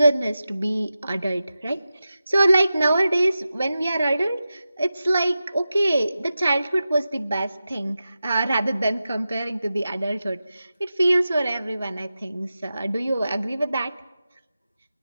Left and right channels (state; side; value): inverted; both; correlation -0.93